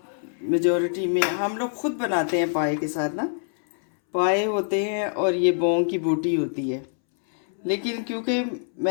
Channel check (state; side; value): silent; right; 62 dB below the other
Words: मेजॉरिटी में हम लोग खुद बनाते हैं। पाए के साथ ना पाए होते हैं और ये बोंग की बोटी होती है। लेकिन क्योंकि